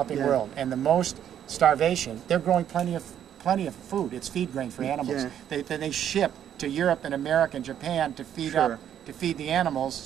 world and the most starvation, they're growing plenty of food. It's feed grain for animals. They ship to Europe and America and Japan to feed the animals,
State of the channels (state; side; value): quieter; left; 9.9 dB